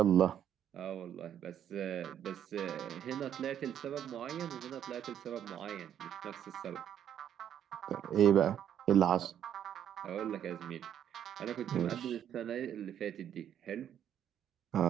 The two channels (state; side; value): quieter; left; 9.8 dB